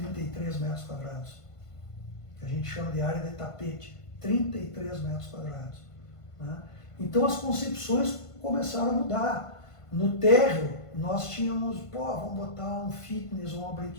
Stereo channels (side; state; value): right; late; 1.5 ms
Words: metros quadrados, que a gente chama de área de tapete, 33 metros quadrados. Né? Então as concepções começaram a mudar. No térreo, nós tínhamos, vamos botar um fitness ou uma